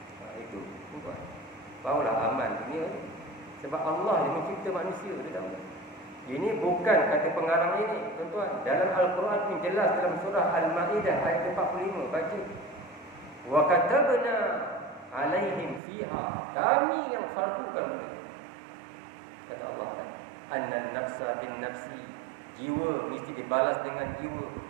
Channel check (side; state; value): left; drops out; at 15.8 s